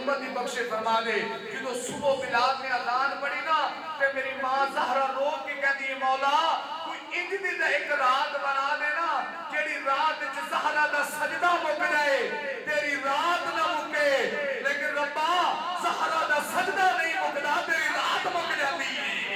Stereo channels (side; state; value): both; identical; correlation 1.00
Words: دی بخشش فرما دے. جدو صبح بلال نے اذان پڑھی نا تے میری ماں زہرا رو کے کہہ دی مولا کوئی انج دی ایک رات بنا دینا جیڑی رات وچ زہرا دا سجدہ مک جائے, تیری رات نہ مکے, لیکن ربا زہرا دا سجدہ نہیں مکدا تیری رات مک جاتی